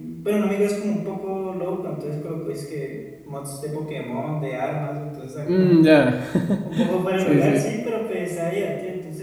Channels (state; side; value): identical; both; correlation 1.00